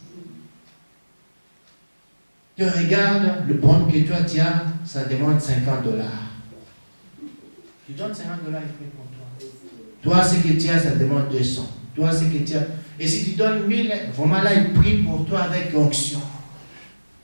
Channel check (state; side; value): inverted; both; correlation -1.00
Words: Tu regardes le bon que toi tu as, ça demande 50 $. Tu donnes 50 $, il fait pour toi. Toi, ce que tu as, ça demande 200. Toi, ce que tu as. Et si tu donnes 1000, vraiment là, il prie pour toi avec onction.